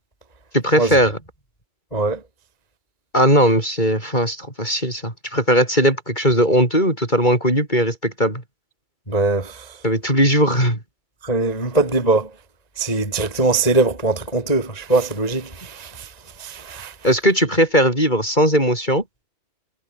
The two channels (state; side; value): late; right; 1.9 ms